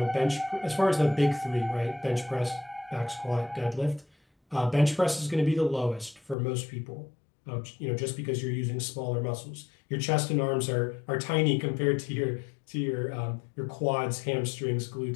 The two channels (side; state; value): right; drops out; at 6.4 s